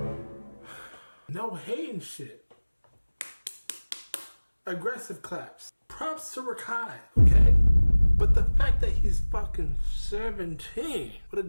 No hating shit. Aggressive claps. Props to Rakai, okay? But the fact that he's fucking 17 with a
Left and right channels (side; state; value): both; inverted; correlation -1.00